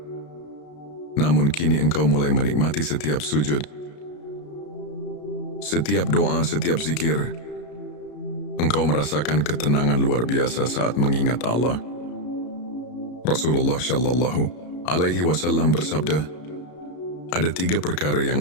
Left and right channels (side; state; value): right; late; 33 ms